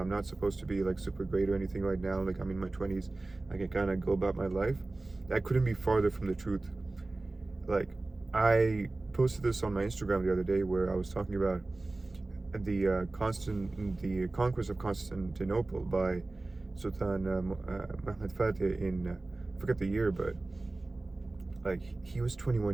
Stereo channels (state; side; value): quieter; left; 3.1 dB